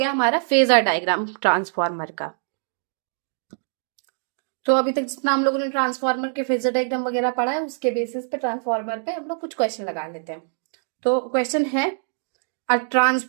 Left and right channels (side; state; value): left; silent; digital silence